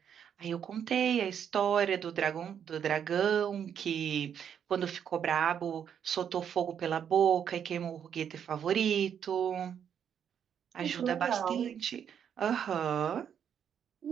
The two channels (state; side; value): quieter; left; 8.4 dB